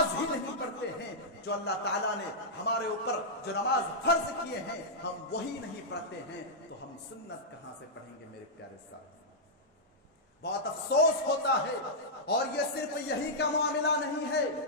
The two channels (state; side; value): normal; both; correlation -0.10